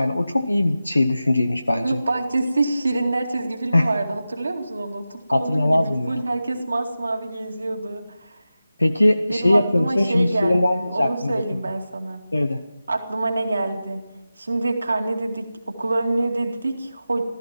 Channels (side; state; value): both; inverted; correlation -0.94